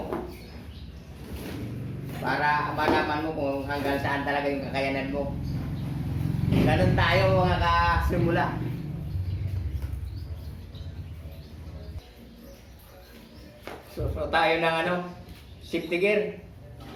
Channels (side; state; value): both; identical; correlation 1.00